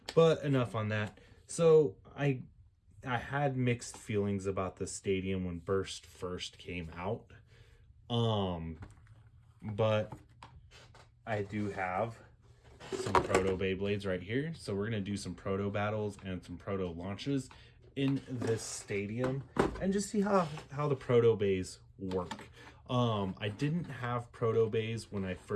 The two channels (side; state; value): both; identical; correlation 1.00